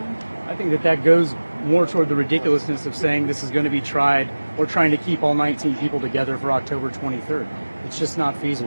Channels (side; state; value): both; inverted; correlation -1.00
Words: I think that goes more toward the ridiculousness of saying this is going to be tried or trying to keep all 19 people together for October 23rd. It's just not